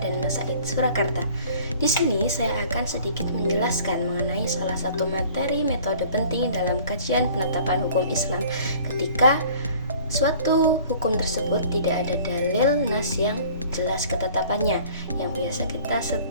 Said Surakarta. Di sini saya akan sedikit menjelaskan mengenai salah satu materi metode penting dalam kajian penetapan hukum Islam ketika suatu hukum tersebut tidak ada dalil nas yang jelas ketetapannya. Yang biasa kita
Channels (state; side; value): inverted; both; correlation -0.50